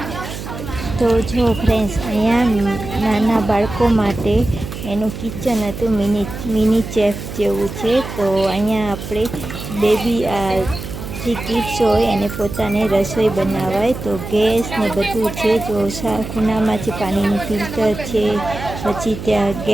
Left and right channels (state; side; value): noise; right; hum, 9 dB below the sound